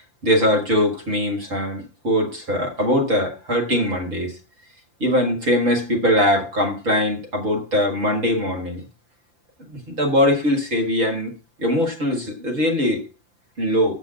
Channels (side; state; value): left; late; 5.8 ms